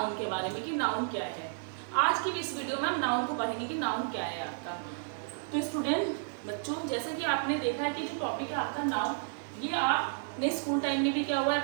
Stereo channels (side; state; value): left; silent; digital silence